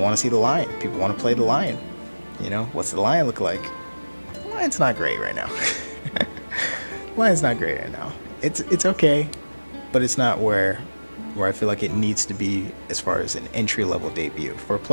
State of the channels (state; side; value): inverted; both; correlation -1.00